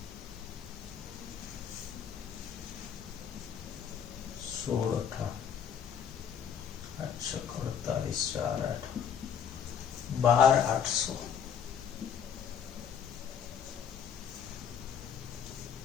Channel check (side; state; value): right; quieter; 7.9 dB